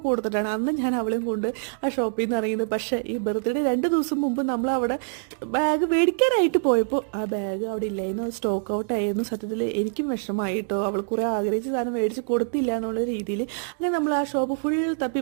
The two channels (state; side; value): silent; left; digital silence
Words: കൊടുത്തിട്ടാണ് അന്ന് ഞാൻ അവളെയും കൊണ്ട് ആ ഷോപ്പിൽ നിന്ന് ഇറങ്ങിയത്. പക്ഷേ ഈ ബർത്ത്ഡേ 2 ദിവസം മുമ്പ് നമ്മളവിടെ ബാഗ് മേടിക്കാനായിട്ട് പോയപ്പോൾ ആ ബാഗ് അവിടെ ഇല്ലായിരുന്നു. സ്റ്റോക്ക് ഔട്ട് ആയിരുന്നു. സത്യത്തിൽ എനിക്കും വിഷമമായിട്ടോ. അവൾ കുറേ ആഗ്രഹിച്ച സാധനം മേടിച്ച് കൊടുത്തില്ല എന്നുള്ള രീതിയിൽ. അങ്ങനെ നമ്മൾ ആ ഷോപ്പ് ഫുൾ